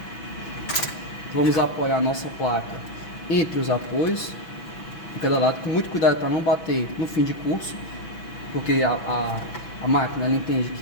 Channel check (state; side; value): late; right; 6.1 ms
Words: Vamos apoiar a nossa placa entre os apoios, de cada lado, com muito cuidado para não bater no fim de curso, porque a máquina ela entende